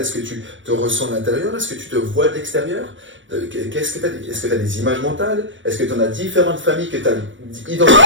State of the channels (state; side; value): late; left; 0.56 ms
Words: est-ce que tu te ressens de l'intérieur? Est-ce que tu te vois de l'extérieur? Est-ce que tu as des images mentales? Est-ce que tu en as différentes familles que tu as identifiées?